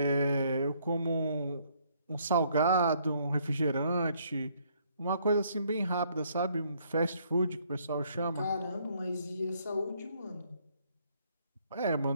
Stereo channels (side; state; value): both; inverted; correlation -0.67